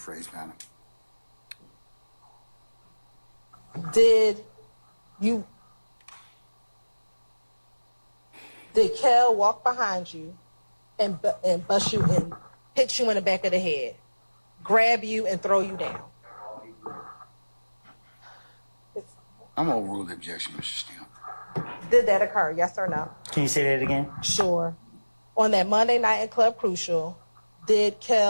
madam. Did Kel walk behind you and bust you and hit you in the back of the head, grab you and throw you down? I'm going to overrule the objection, Mr. Steele. Did that occur, yes or no? Can you say that again? Sure. On that Monday night in Club Crucial, did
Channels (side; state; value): both; inverted; correlation -1.00